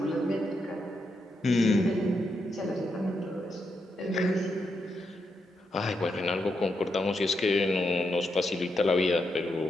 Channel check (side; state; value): both; normal; correlation 0.83